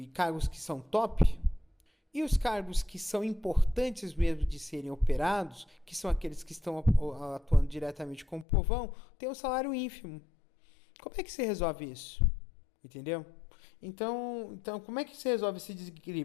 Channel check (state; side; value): drops out; right; at 8.5 s